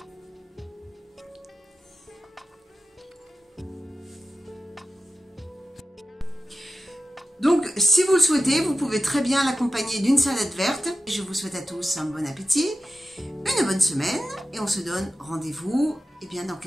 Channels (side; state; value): both; normal; correlation 0.93